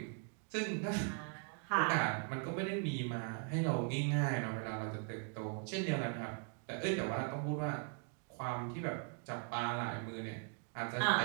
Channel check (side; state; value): left; quieter; 39.2 dB